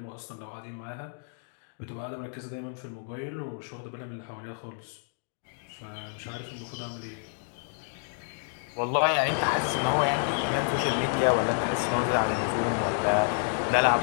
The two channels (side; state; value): right; silent; 58 dB below the other